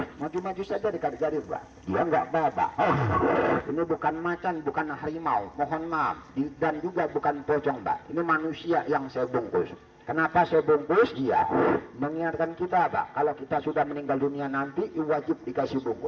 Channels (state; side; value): identical; both; correlation 1.00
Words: Maju-maju saja dekat garis, Pak. Dia enggak babak. Ini bukan macan, bukan harimau. Mohon maaf. Dan juga bukan pocong, Pak. Ini manusia yang saya bungkus. Kenapa saya bungkus? Iya, mengingatkan kita, Pak, kalau kita sudah meninggal dunia nanti wajib dikasih